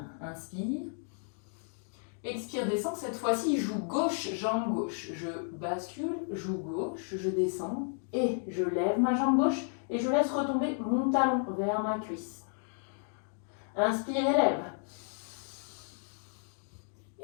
Inspire. Expire, descend. Cette fois-ci, joue gauche, jambe gauche. Je bascule, joue gauche, je descends et je lève ma jambe gauche et je laisse retomber mon talon vers ma cuisse. Inspire et lève.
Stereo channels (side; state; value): right; silent; 56 dB below the other